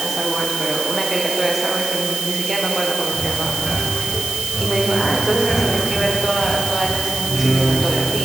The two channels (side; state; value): right; noise; hiss, 5 dB below the sound